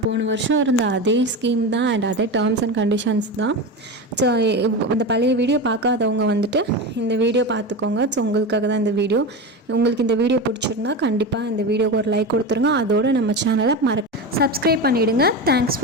போன வருஷம் இருந்த அதே ஸ்கீம் தான் அண்ட் அதே டேர்ம்ஸ் அண்ட் கண்டிஷன்ஸ் தான். ஸோ இந்த பழைய வீடியோ பார்க்காதவங்க வந்துட்டு இந்த வீடியோ பார்த்துக்கோங்க. ஸோ உங்களுக்காக தான் இந்த வீடியோ. உங்களுக்கு இந்த வீடியோ பிடிச்சிருந்தா கண்டிப்பாக இந்த வீடியோக்கு ஒரு லைக் கொடுத்துருங்க. அதோடு நம்ம சேனலை சப்ஸ்கிரைப் பண்ணிவிடுங்க. தேங்க்ஸ்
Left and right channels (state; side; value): normal; both; correlation 0.22